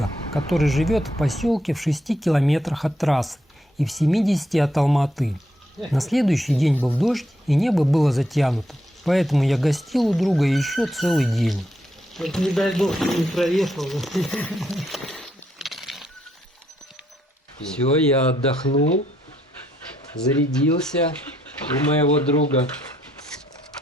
который живет в поселке в 6 километрах от трассы и в 70 от Алматы. На следующий день был дождь и небо было затянуто, поэтому я гостил у друга еще целый день. Вот не дай бог, не проехал. Все, я отдохнул, зарядился у моего друга.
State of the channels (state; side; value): normal; both; correlation 0.75